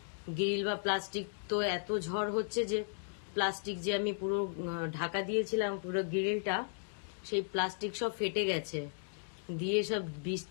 গ্রিল বা প্লাস্টিক, তো এত ঝড় হচ্ছে যে প্লাস্টিক যে আমি পুরো ঢাকা দিয়েছিলাম পুরো গ্রিলটা, সেই প্লাস্টিক সব ফেটে গেছে, দিয়ে সব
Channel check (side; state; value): right; silent; digital silence